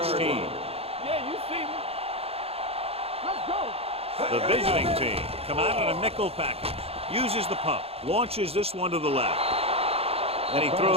team. Yeah, you see me. Let's go. The visiting team come out in a nickel package. Uses the pump. Launches this one to the left. And he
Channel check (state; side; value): late; left; 0.29 ms